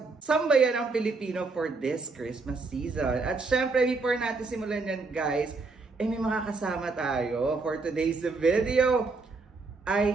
sambayan ng Pilipino for this Christmas season. At syempre, before natin simulan yan guys, may mga kasama tayo for today's video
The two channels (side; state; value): left; quieter; 3.9 dB